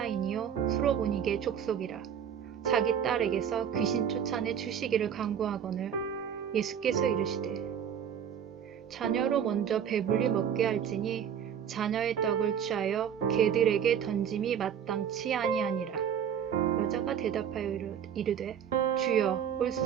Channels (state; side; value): quieter; left; 8.5 dB